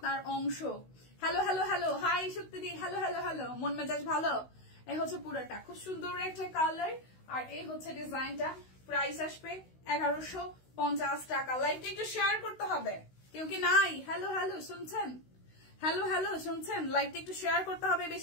অংশ। হ্যালো হ্যালো হ্যালো, হাই শক্তিদি, হ্যালো হ্যালো হ্যালো, মন মেজাজ ভালো। এই হচ্ছে পুরোটা, খুব সুন্দর একটা কালার, আর এই হচ্ছে ডিজাইনটা। প্রাইস আসবে 1150 টাকা। লাইভটা একটু শেয়ার করতে হবে, কেউ কি নাই? হ্যালো হ্যালো শুনছেন, হ্যালো হ্যালো শুনছেন, লাইভটা একটু শেয়ার করতে হবে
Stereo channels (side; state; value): right; late; 16 ms